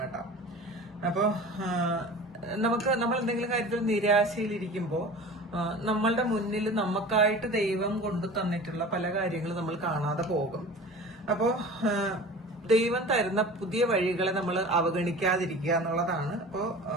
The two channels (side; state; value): both; normal; correlation 0.38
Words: കേട്ടോ. അപ്പോ നമ്മൾ എന്തെങ്കിലും കാര്യത്തിൽ നിരാശയിലിരിക്കുമ്പോ നമ്മളുടെ മുന്നിൽ നമുക്കായിട്ട് ദൈവം കൊണ്ടു തന്നിട്ടുള്ള പല കാര്യങ്ങളും നമ്മൾ കാണാതെ പോകും. അപ്പോ ദൈവം തരുന്ന പുതിയ വഴികളെ നമ്മൾ അവഗണിക്കാതിരിക്കുക എന്നുള്ളതാണ്. അപ്പോ